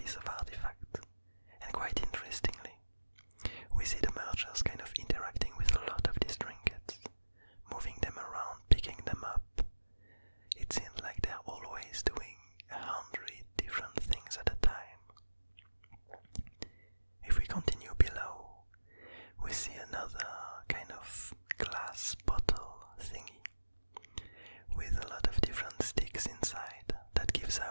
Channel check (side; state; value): both; inverted; correlation -1.00